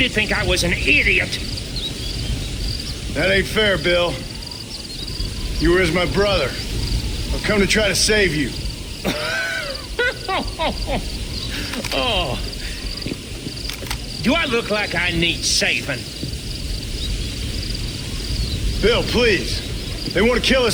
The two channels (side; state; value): both; identical; correlation 1.00